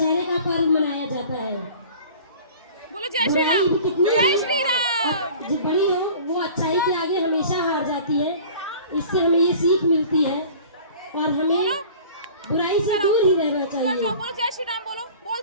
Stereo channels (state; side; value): inverted; both; correlation -0.44